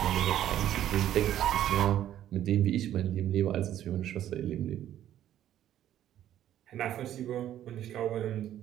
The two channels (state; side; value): quieter; left; 11.7 dB